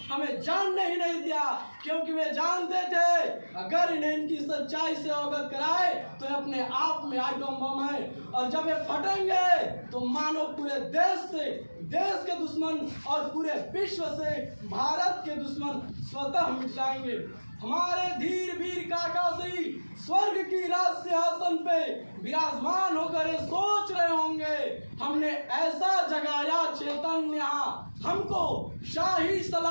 हमें जानने ही नहीं दिया, क्योंकि वे जानते थे अगर इन्हें इनकी सच्चाई से अवगत कराए तो ये अपने आप में आइटम बम है और जब ये फटेंगे तो मानो पूरे देश से, देश के दुश्मन और पूरे विश्व से भारत के दुश्मन स्वतः मिट जाएंगे। हमारे धीर वीर काका श्री स्वर्ग की राज सिंहासन पे विराजमान होकर ये सोच रहे होंगे हमने ऐसा जगाया चेतन यहाँ, हमको शाही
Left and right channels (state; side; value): inverted; both; correlation -1.00